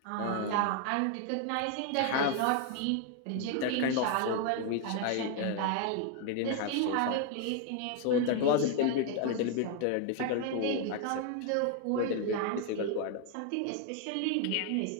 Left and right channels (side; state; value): both; different; correlation 0.00